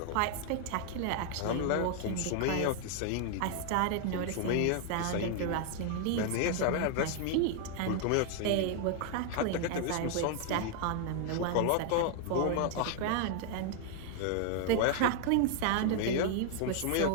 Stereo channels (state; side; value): different; both; correlation 0.00